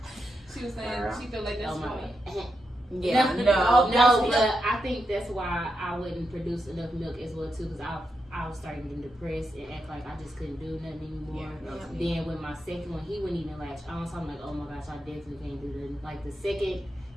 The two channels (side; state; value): both; normal; correlation 0.85